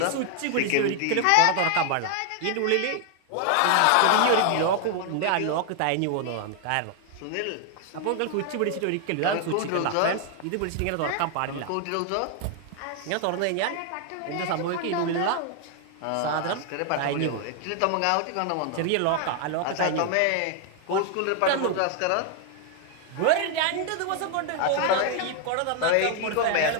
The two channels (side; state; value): both; different; correlation 0.00